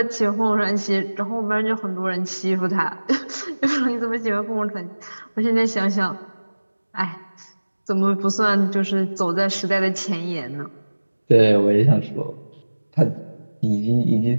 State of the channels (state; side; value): inverted; both; correlation -1.00